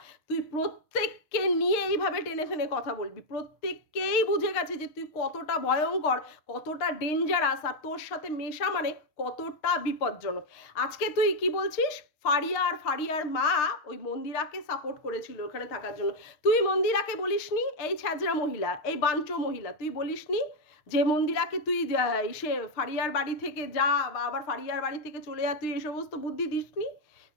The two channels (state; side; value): late; right; 6.6 ms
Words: তুই প্রত্যেককে নিয়ে এইভাবে টেনে টেনে কথা বলবি, প্রত্যেককেই বুঝে গেছে যে তুই কতটা ভয়ঙ্কর, কতটা ডেঞ্জারাস, আর তোর সাথে মেশা মানে কতটা বিপজ্জনক। আজকে তুই কি বলছিস? ফারিয়া আর ফারিয়ার মা ওই মন্দিরাকে সাপোর্ট করেছিল ওখানে থাকার জন্য। তুই মন্দিরাকে বলিসনি এই ছ্যাজরা মহিলা, এই বাঞ্চো মহিলা, তুই বলিসনি যে মন্দিরাকে তুই সে ফারিয়ার বাড়ি থেকে যা, বা আবার ফারিয়ার বাড়ি থেকে চলে যা, তুই এই সমস্ত বুদ্ধি দিসনি?